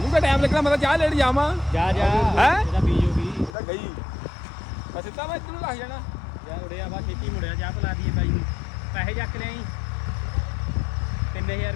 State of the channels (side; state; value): right; drops out; at 3.5 s